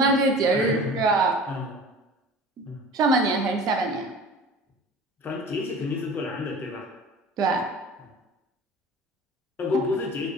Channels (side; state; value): both; normal; correlation 0.40